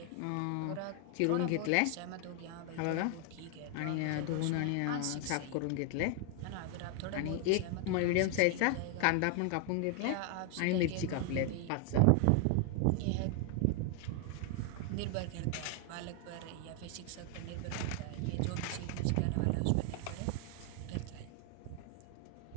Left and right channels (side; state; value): both; different; correlation 0.00